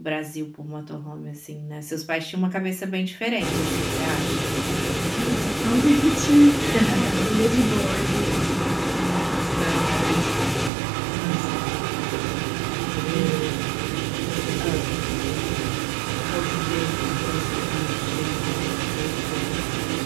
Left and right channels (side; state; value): left; drops out; at 10.7 s